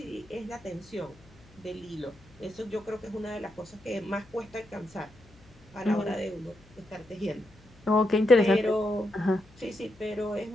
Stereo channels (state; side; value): noise; left; hum, 26 dB below the sound